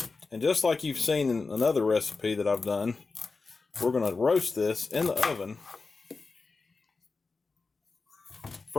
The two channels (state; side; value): quieter; right; 4.2 dB